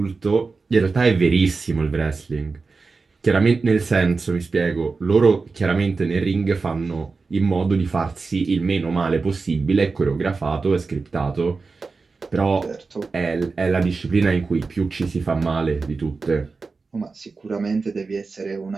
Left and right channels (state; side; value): quieter; left; 4.3 dB